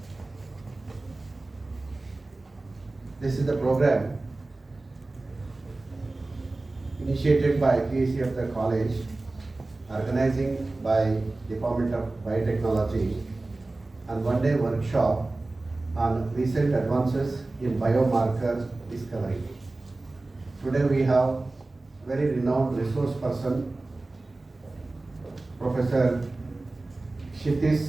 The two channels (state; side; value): quieter; left; 3.1 dB